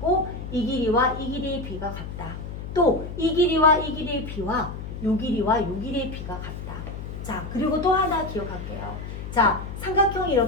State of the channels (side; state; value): left; noise; hum, 8 dB below the sound